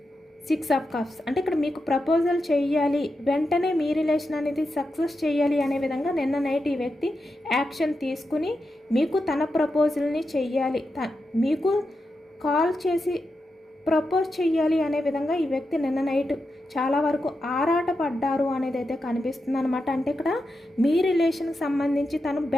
6 of cups, అంటే ఇక్కడ మీకు ప్రపోజల్ చేయాలి, వెంటనే మీ రిలేషన్ అనేది సక్సెస్ చేయాలి అనే విధంగా నిన్న నైట్ ఈ వ్యక్తి యాక్షన్ తీసుకుని మీకు తన ప్రపోజల్ని చెయ్యాలి, మీకు కాల్ చేసి ప్రపోజ్ చెయ్యాలి అనే విధంగా ఈ వ్యక్తి నిన్న నైట్ చాలా వరకు ఆరాటపడ్డారు అనేది అయితే కనిపిస్తుంది అనమాట. అంటే ఇక్కడ మీ రిలేషన్కి సంబంధించి తను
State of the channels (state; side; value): normal; both; correlation 0.88